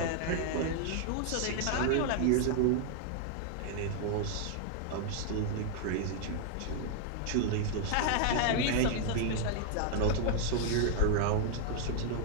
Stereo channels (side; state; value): both; different; correlation 0.00